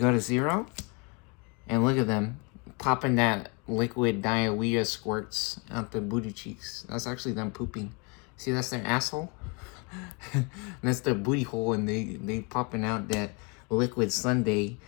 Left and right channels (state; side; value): quieter; right; 31.6 dB